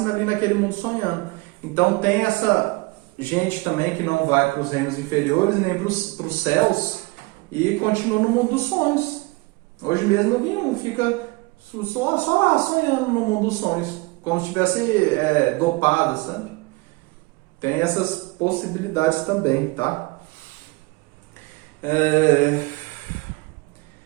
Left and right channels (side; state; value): left; quieter; 24.4 dB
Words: ali naquele mundo sonhando. Então tem essa gente também que não vai para os reinos inferiores nem para os céus e continua no mundo dos sonhos. Hoje mesmo eu vi um, fica só lá sonhando no mundo dos sonhos, como se estivesse dopado, sabe? Tem essas possibilidades também, tá?